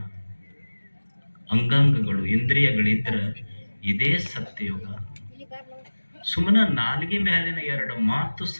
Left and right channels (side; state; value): both; inverted; correlation -1.00